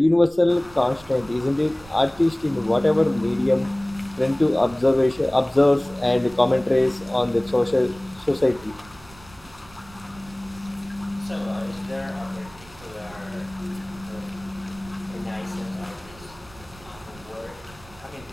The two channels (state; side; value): noise; right; rumble, 22 dB below the sound